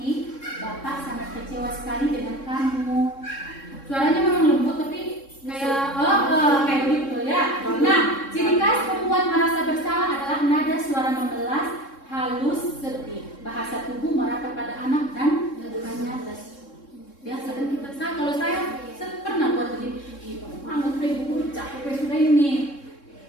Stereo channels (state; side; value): late; right; 3.7 ms